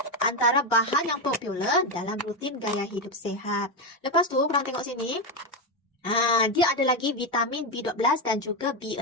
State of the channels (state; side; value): normal; both; correlation 0.09